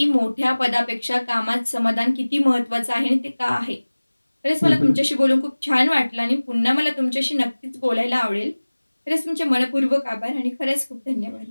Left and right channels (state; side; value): inverted; both; correlation -1.00